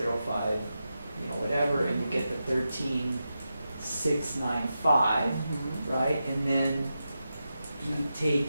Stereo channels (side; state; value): both; inverted; correlation -0.89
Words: whatever, and you get the 13,695, right? And then you take